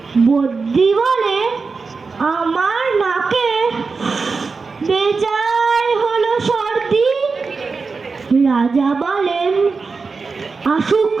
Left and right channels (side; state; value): left; quieter; 4.5 dB